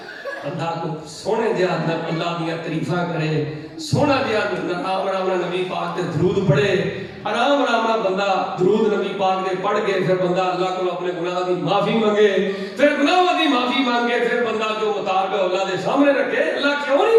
بندہ کو سونے دیا اللہ دیا تعریفاں کرے، سونا دیا آرام آرام نبی پاک دے درود پڑھے، آرام آرام بندہ درود نبی پاک دے پڑھ کے پھر بندہ اللہ کو اپنے گناہ دی معافی مانگے، پھر گناہ دی معافی مانگے، پھر بندہ جو مطالبہ اللہ دے سامنے رکھے، اللہ کیوں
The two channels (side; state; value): both; identical; correlation 1.00